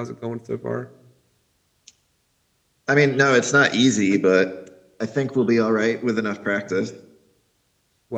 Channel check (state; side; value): identical; both; correlation 1.00